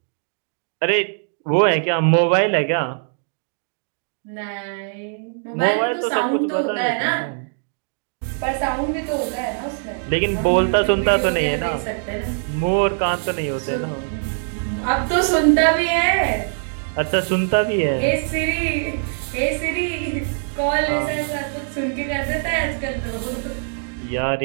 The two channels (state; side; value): silent; left; digital silence